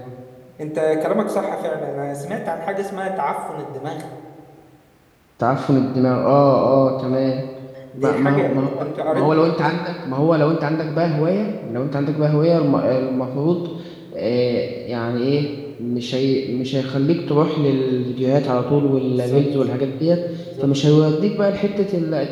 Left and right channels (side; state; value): both; identical; correlation 1.00